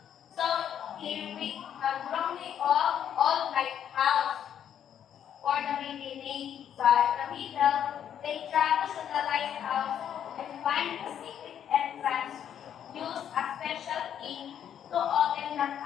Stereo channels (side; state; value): right; quieter; 9.4 dB